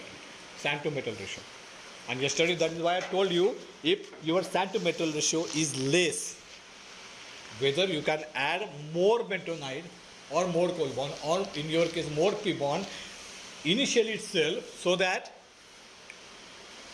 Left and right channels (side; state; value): both; identical; correlation 1.00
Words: Sand to metal ratio. And yesterday that is why I told you if your sand to metal ratio is less, whether you can add more bentonite or more coal bond or in your case more P bond initially itself so that